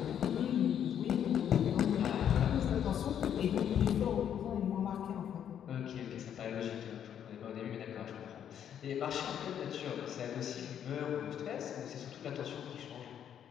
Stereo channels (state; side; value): quieter; right; 9.3 dB